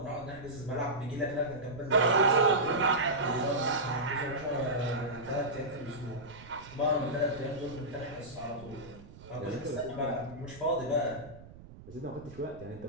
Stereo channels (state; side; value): noise; right; rumble, 18 dB below the sound